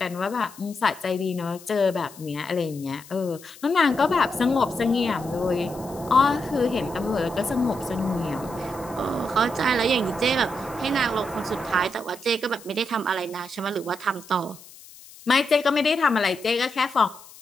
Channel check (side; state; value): left; noise; hiss, 20 dB below the sound